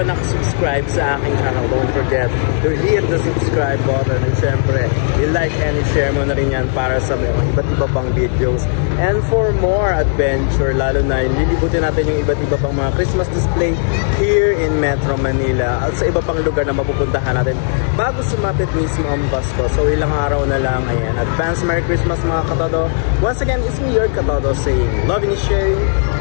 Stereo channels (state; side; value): silent; right; digital silence